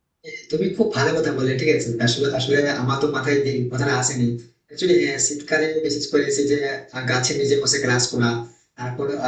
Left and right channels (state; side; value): identical; both; correlation 1.00